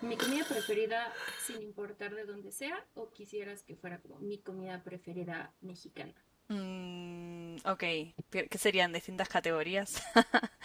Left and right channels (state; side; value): identical; both; correlation 1.00